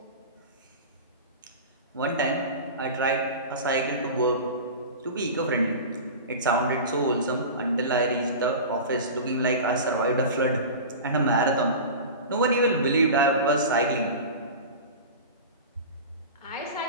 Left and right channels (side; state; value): both; inverted; correlation -0.31